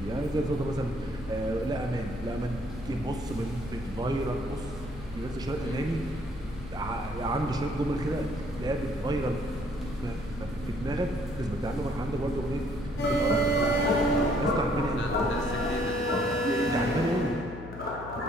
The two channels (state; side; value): noise; left; hum, 13 dB below the sound